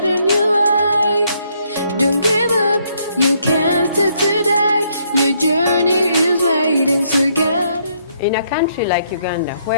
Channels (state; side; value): inverted; both; correlation -0.71